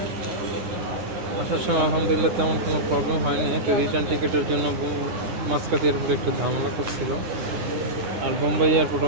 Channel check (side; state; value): left; late; 10 ms